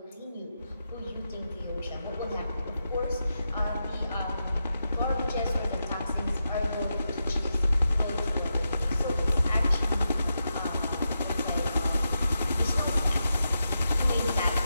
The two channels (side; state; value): both; inverted; correlation -0.87